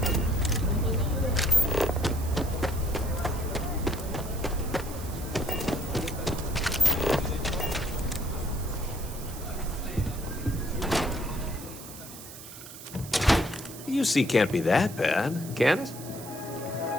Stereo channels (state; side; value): noise; right; hiss, 14 dB below the sound